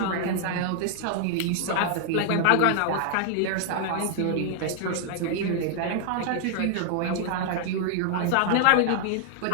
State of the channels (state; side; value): different; both; correlation 0.00